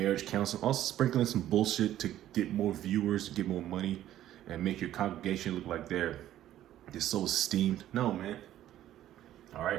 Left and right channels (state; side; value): quieter; left; 12.7 dB